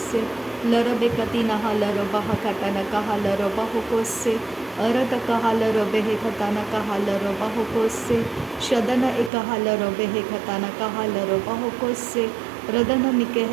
laro bekatina halaro bahakatana kahalaro bahukose arata kahalaro behekatana kahalaro bahukose shadana ekahalaro behekatana kahalaro bahukose radana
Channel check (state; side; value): drops out; left; at 9.3 s